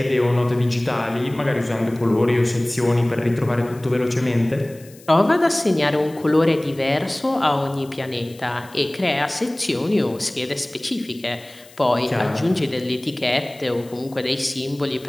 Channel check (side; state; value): left; noise; hiss, 24 dB below the sound